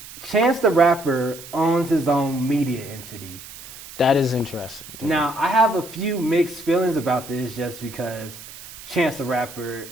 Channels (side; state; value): right; noise; hiss, 15 dB below the sound